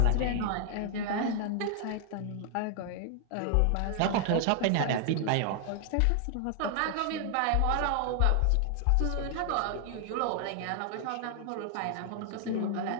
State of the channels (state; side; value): different; both; correlation 0.00